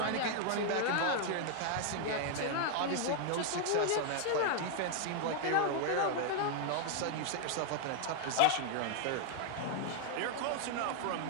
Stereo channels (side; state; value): both; different; correlation 0.00